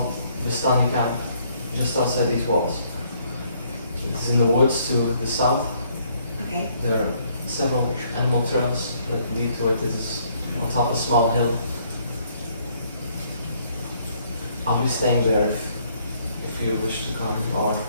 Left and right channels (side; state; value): both; inverted; correlation -0.66